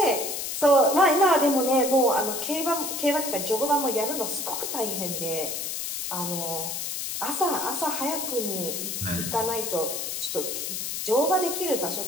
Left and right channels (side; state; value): left; noise; hiss, 4 dB below the sound